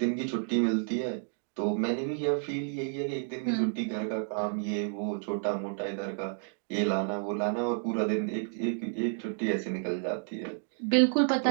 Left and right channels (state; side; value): silent; left; digital silence